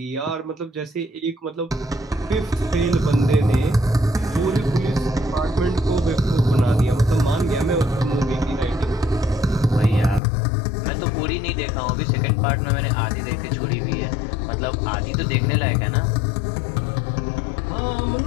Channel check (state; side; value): drops out; right; at 10.2 s